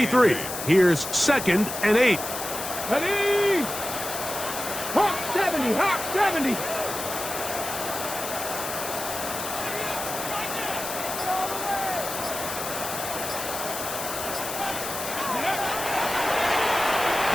here's 2nd and 8. Ready? Hawk 70. Hawk 70.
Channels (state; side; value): noise; left; hiss, 6 dB below the sound